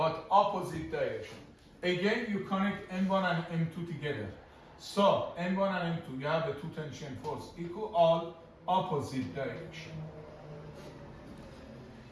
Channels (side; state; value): both; identical; correlation 1.00